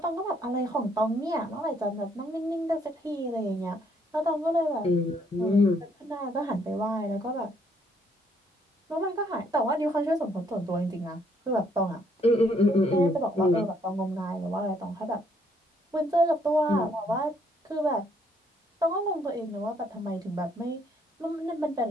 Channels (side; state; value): both; normal; correlation 0.68